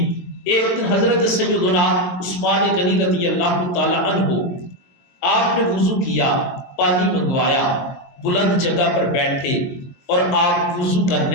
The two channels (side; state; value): right; late; 23 ms